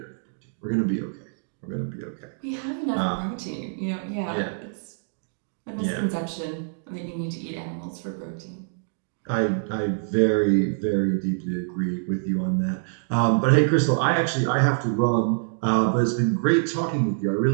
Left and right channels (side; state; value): left; silent; digital silence